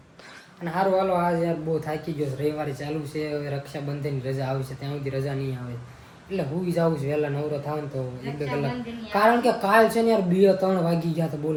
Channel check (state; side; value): identical; both; correlation 1.00